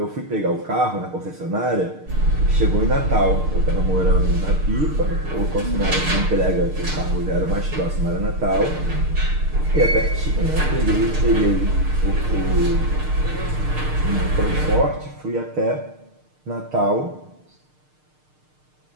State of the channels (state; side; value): late; left; 6.6 ms